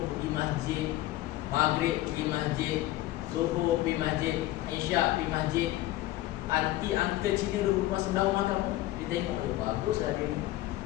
pergi masjid, maghrib pergi masjid, zuhur pergi masjid, isyak pergi masjid, anti uncle Cina duduk sebelah rumah kamu, dia tengok, oh baguslah dia ni,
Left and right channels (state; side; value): quieter; right; 16.1 dB